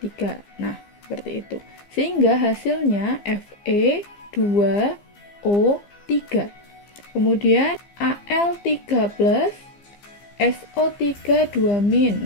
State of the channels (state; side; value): late; right; 15 ms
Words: Nah, seperti itu. Sehingga hasilnya Fe2O3. Kemudian Al3+ SO3 2-.